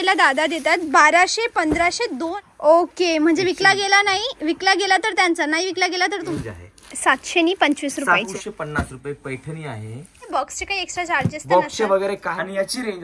दादा देतात. 1200, 1500, 2. ओके, म्हणजे विकला गेला नाही, विकला गेला तर त्यांचा, नाही विकला गेला तर तुमचा. 700 नि 25 रुपयाचे. 750 रुपये पैठणी आहे. बॉक्सचे काही एक्स्ट्रा चार्जेस बॉक्सचे वगैरे काय, आणि याची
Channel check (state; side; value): identical; both; correlation 1.00